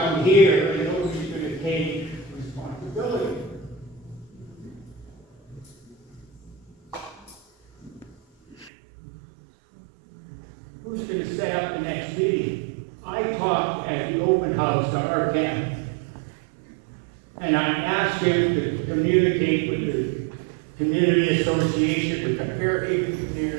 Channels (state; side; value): drops out; left; at 8.7 s